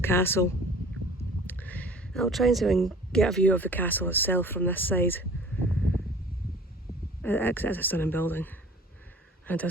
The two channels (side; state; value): both; normal; correlation 0.46